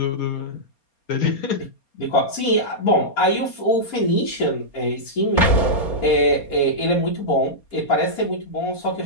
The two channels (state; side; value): late; right; 4.3 ms